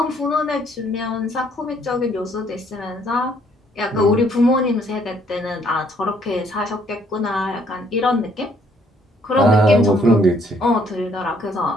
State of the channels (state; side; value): normal; both; correlation 0.65